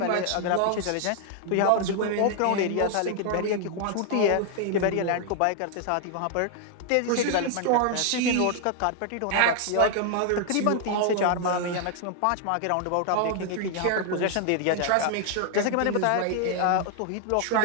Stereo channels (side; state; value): both; different; correlation 0.00